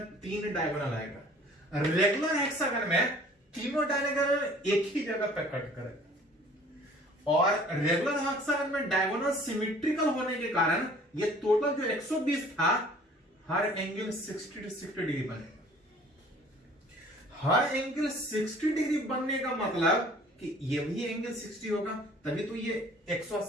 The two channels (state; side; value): normal; both; correlation 0.51